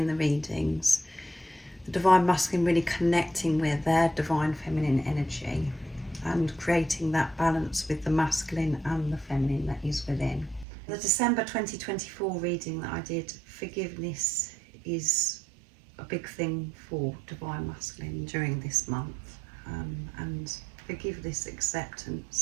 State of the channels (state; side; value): drops out; left; at 10.7 s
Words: the readings. The divine masculine really connecting with their divine feminine energy and creating that balance with the masculine and the feminine that is within. The December 2024 reading that I did, forgiveness is a big thing for divine masculine during this month, and forgiveness,